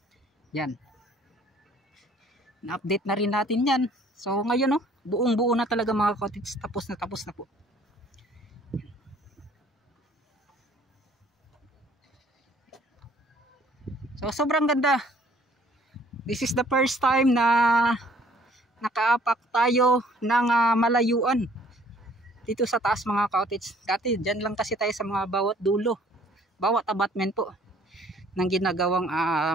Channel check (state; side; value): normal; both; correlation 0.58